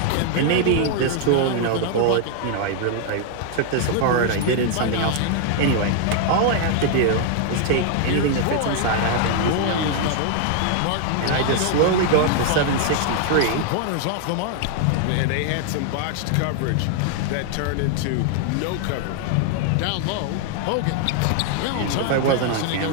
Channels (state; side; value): different; both; correlation 0.00